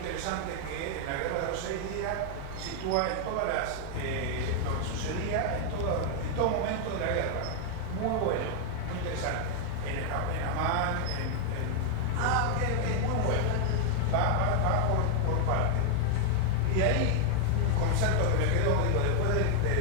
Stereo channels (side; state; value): both; different; correlation 0.00